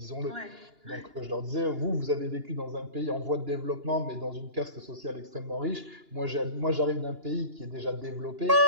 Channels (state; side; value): late; left; 2.9 ms